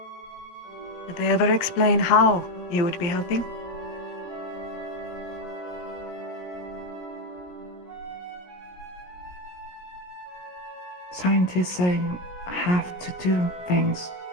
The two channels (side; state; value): right; late; 17 ms